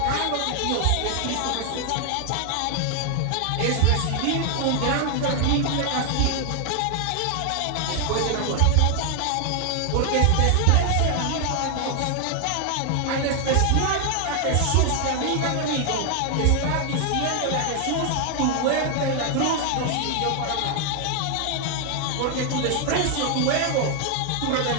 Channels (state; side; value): different; both; correlation 0.00